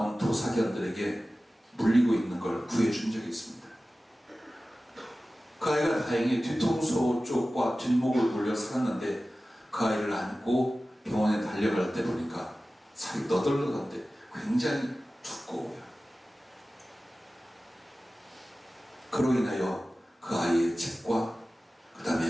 도사견들에게 물리고 있는 걸 구해준 적이 있습니다. 그 아이가 다행히 뒤통수 쪽과 뒷목을 물려 살았는데 그 아이를 안고 병원에 달려갈 때 보니까 살이 너덜너덜한데 굉장히 두꺼워요. 그로 인하여 그 아이의 집과 그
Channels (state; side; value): normal; both; correlation 0.96